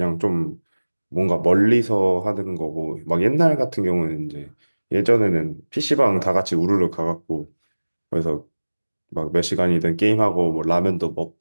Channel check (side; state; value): both; inverted; correlation -1.00